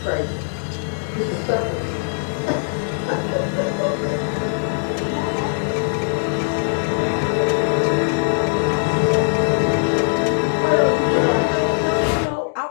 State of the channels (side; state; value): right; silent; digital silence